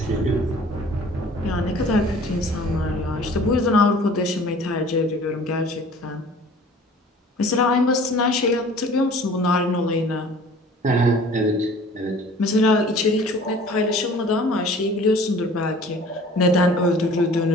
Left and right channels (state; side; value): normal; both; correlation 0.48